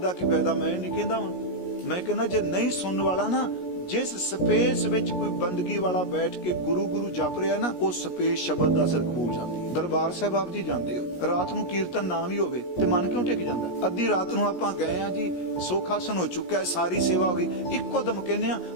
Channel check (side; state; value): right; late; 17 ms